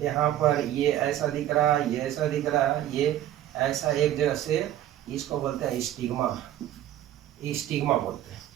यहाँ पर ये ऐसा दिख रहा है, ये ऐसा दिख रहा है, ये ऐसा एक जगह से, इसको बोलते हैं स्टिग्मा बोलते हैं।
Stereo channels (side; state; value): left; quieter; 12.4 dB